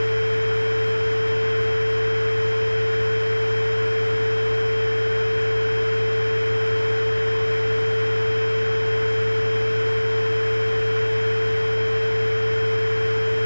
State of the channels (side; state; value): both; inverted; correlation -1.00